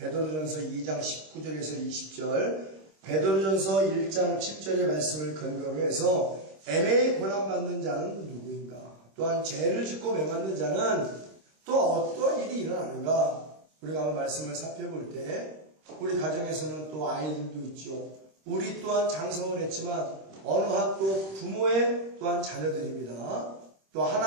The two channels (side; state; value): left; late; 26 ms